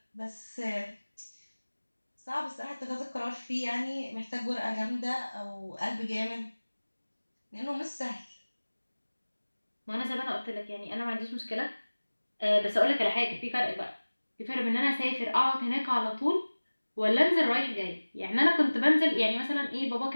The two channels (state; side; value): inverted; both; correlation -1.00